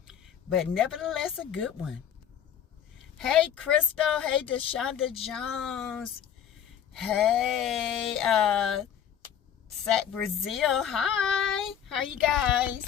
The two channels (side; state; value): right; quieter; 9.1 dB